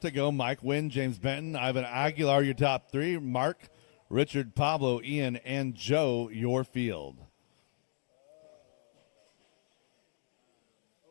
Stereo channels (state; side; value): silent; right; digital silence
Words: to go. Mike Wynn, James Benton, Ivan Aguilar, your top three. Mark, Richard, Pablo, Ian, and Joe, your field.